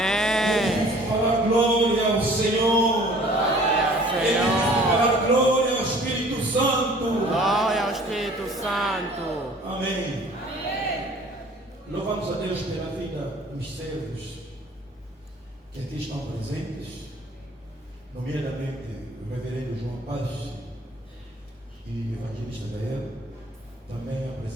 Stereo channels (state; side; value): normal; both; correlation 0.51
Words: difícil falar glória ao Senhor. É difícil falar glória ao Espírito Santo. Glória ao Espírito Santo. Amém. Louvamos a Deus pela vida dos servos que aqui estão presentes, nomeadamente o reverendo João Paz e o evangelista Gael, também a